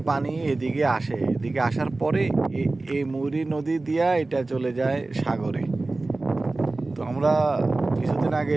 পানি এদিকে আসে। এদিকে আসার পরে এই মুহুরী নদী দিয়া এটা চলে যায় সাগরে। তো আমরা কিছুদিন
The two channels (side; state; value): left; quieter; 3.2 dB